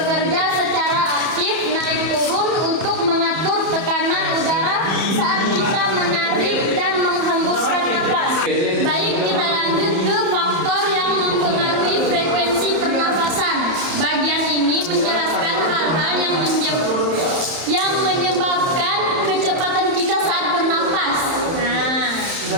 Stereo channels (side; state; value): left; late; 31 ms